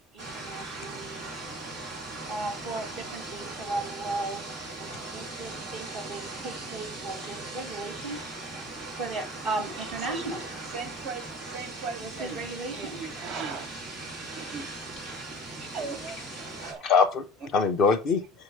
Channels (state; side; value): normal; both; correlation 0.40